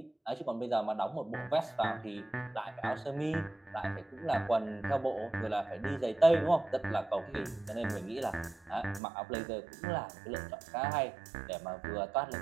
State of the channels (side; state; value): left; drops out; at 9.0 s